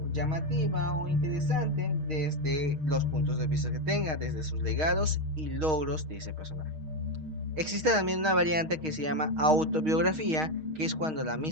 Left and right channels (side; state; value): left; late; 6.4 ms